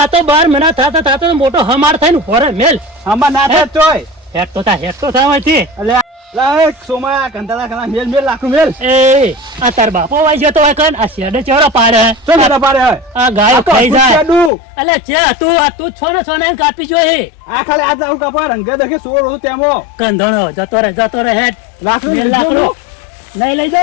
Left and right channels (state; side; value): drops out; right; at 14.5 s